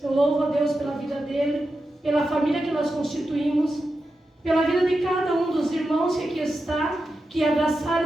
Eu louvo a Deus pela vida dele, pela família que nós constituímos, pela vida de cada um dos irmãos que aqui está, que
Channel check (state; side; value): normal; both; correlation 0.90